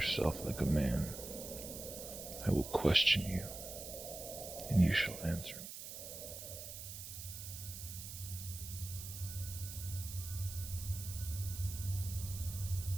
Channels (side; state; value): right; noise; hiss, 9 dB below the sound